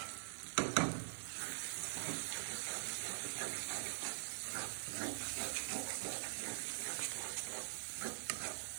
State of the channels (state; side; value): silent; left; digital silence